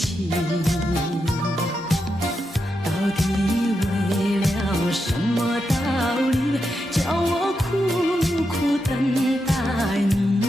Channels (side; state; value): both; normal; correlation 0.86